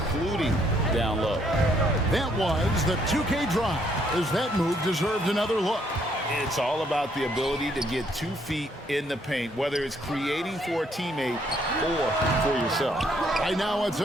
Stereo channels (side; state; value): both; normal; correlation 0.69